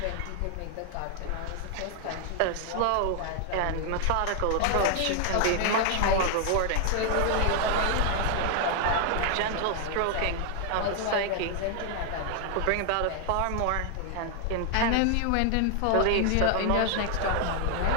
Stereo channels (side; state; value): both; different; correlation 0.00